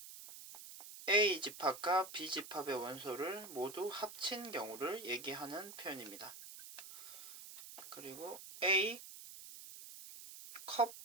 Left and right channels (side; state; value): right; noise; hiss, 13 dB below the sound